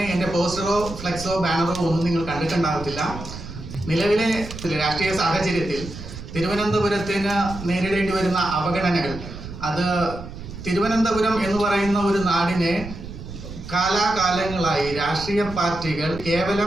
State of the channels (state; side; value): noise; right; rumble, 11 dB below the sound